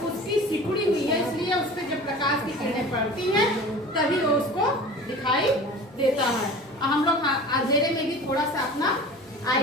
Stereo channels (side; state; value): both; normal; correlation 0.39